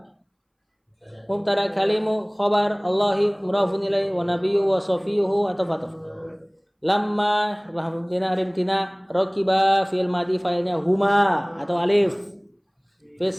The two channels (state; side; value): identical; both; correlation 1.00